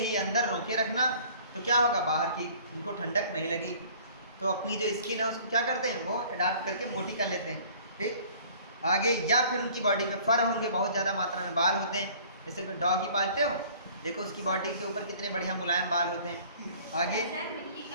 अंदर रोके रखना। तो क्या होगा, बाहर की उनको ठंडक नहीं लगी, तो अपनी जो स्किन है उसको क्या करते हैं, वो अडाप्ट करके मोटी कर लेते हैं। ठीक, आगे, या फिर उनकी बॉडी में फर होंगे, बहुत ज़्यादा मात्रा में बाल होते हैं, जैसे कोई डॉग ही पालते हो, देखो उसकी बॉडी के ऊपर कितने बढ़िया मुलायम बाल होते हैं। आगे,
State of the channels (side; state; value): both; inverted; correlation -0.51